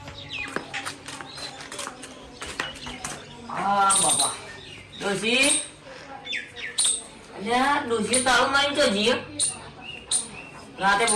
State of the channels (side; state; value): both; identical; correlation 1.00